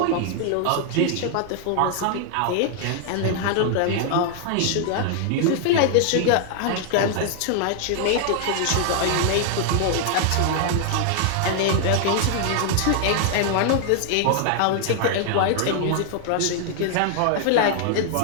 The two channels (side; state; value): both; different; correlation 0.00